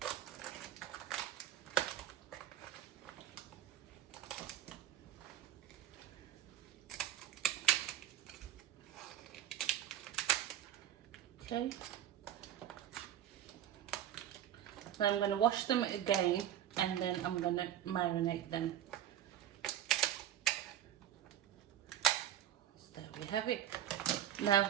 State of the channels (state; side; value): quieter; left; 11.4 dB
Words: Okay, so I'm going to wash them again, and then I'm going to marinate them. So there we have it.